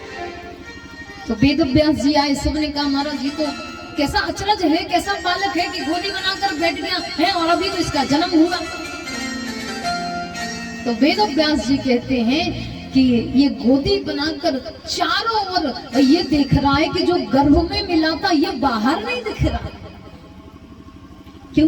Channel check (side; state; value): both; identical; correlation 1.00